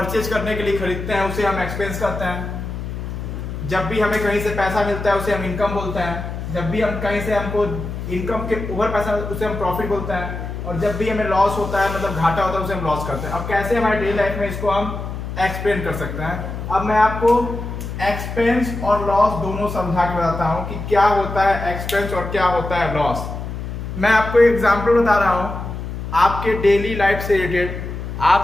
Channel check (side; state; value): left; noise; hum, 7 dB below the sound